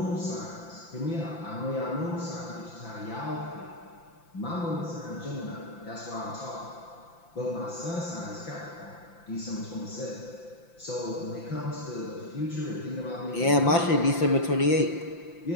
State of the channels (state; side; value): late; right; 5.9 ms